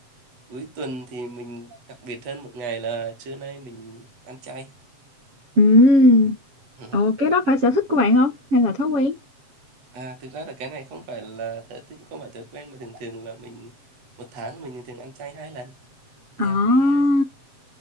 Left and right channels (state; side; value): late; left; 7.6 ms